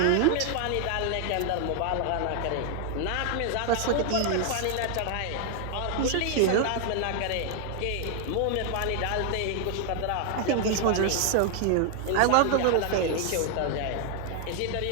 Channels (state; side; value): different; both; correlation 0.00